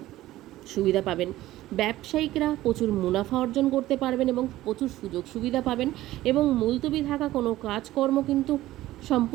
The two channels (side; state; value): left; quieter; 15.6 dB